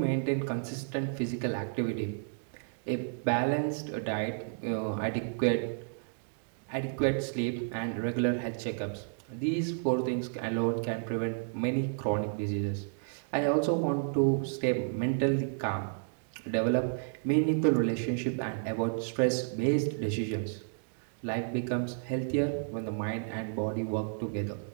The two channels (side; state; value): left; silent; digital silence